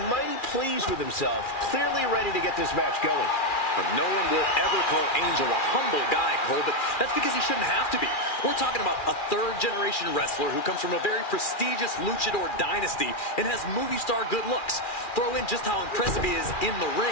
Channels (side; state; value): right; late; 2.4 ms